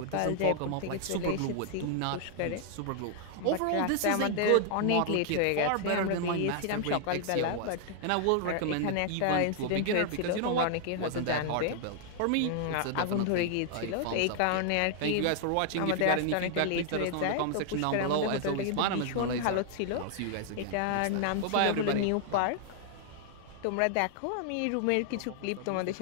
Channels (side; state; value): both; different; correlation 0.00